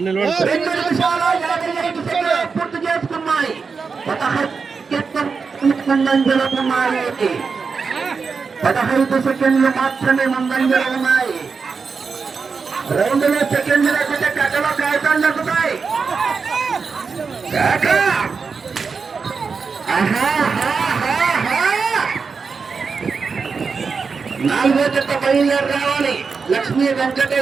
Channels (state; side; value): quieter; left; 5.2 dB